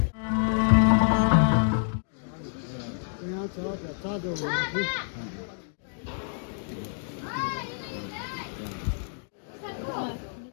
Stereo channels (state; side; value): silent; right; digital silence